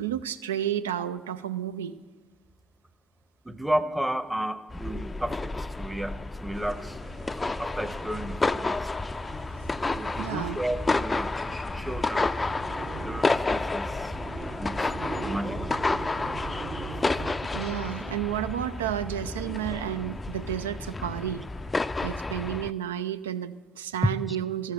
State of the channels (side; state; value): both; normal; correlation 0.67